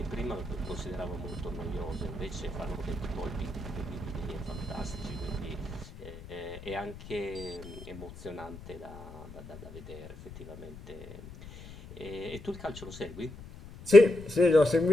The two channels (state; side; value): noise; left; rumble, 15 dB below the sound